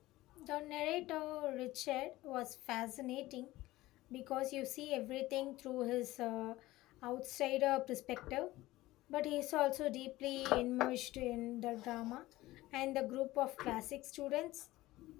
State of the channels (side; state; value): right; quieter; 17.7 dB